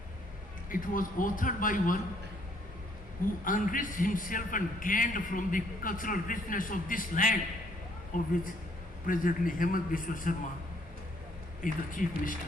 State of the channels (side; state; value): both; normal; correlation 0.66